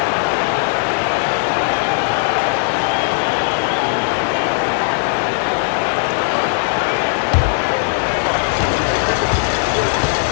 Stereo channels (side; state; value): right; silent; 68 dB below the other